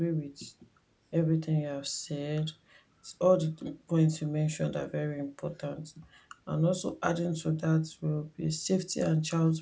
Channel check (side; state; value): both; identical; correlation 1.00